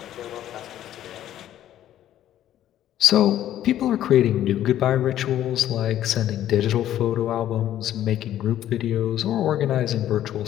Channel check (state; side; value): quieter; right; 12.0 dB